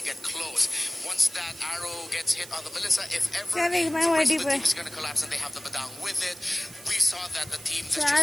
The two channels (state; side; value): noise; right; hiss, 17 dB below the sound